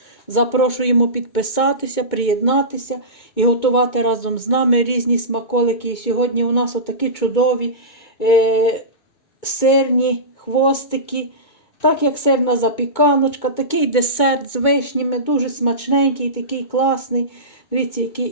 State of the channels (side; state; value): right; late; 2.2 ms